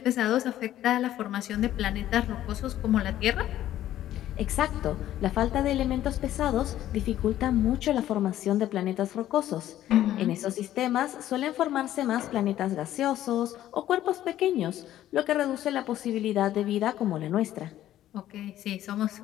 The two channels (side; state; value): right; quieter; 12.9 dB